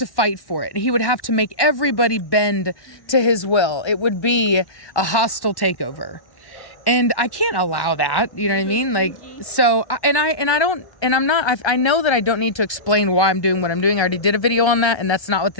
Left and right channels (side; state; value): right; late; 1.2 ms